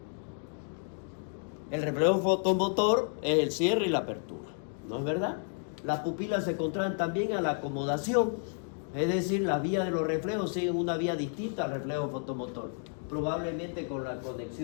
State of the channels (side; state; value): right; silent; 57 dB below the other